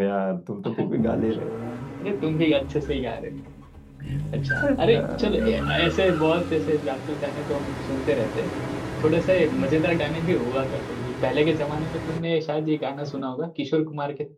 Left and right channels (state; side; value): identical; both; correlation 1.00